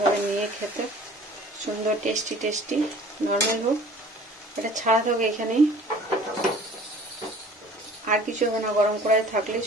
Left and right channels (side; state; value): both; normal; correlation 0.48